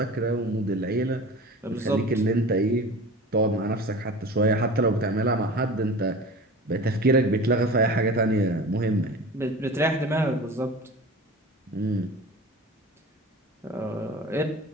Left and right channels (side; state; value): both; normal; correlation 0.36